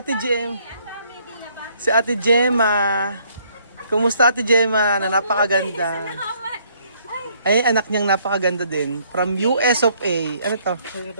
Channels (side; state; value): both; inverted; correlation -0.66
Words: Ate Gemma. Kumusta Ate Gemma na napakaganda? Ay, anak niyang napakaganda din. From US of A. Ano to?